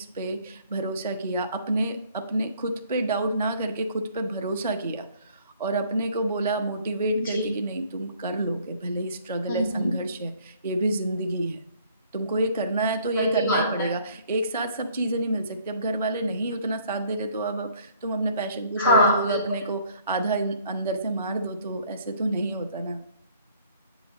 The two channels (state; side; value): inverted; both; correlation -0.59